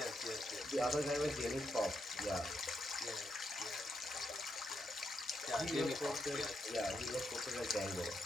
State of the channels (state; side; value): normal; both; correlation 0.82